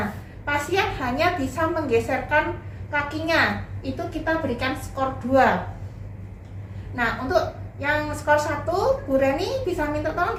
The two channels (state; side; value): identical; both; correlation 1.00